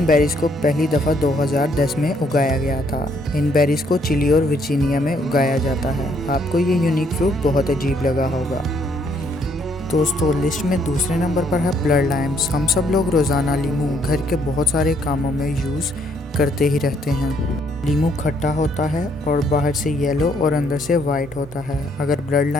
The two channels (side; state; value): both; normal; correlation 0.69